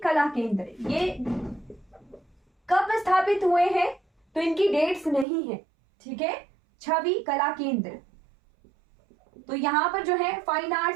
कला केंद्र ये कब स्थापित हुए हैं? तो इनकी डेट्स नहीं है, ठीक है। छवि कला केंद्र, तो यहां पर जो है फाइन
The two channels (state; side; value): drops out; left; at 5.2 s